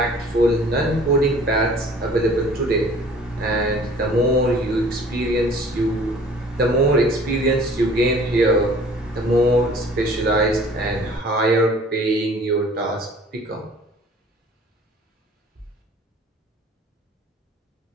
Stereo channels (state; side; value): normal; both; correlation 0.50